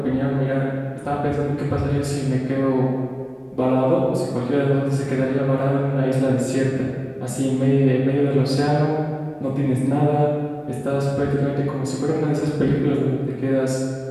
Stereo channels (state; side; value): identical; both; correlation 1.00